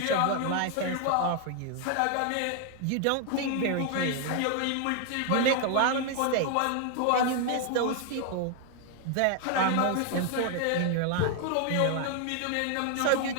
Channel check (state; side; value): different; both; correlation 0.00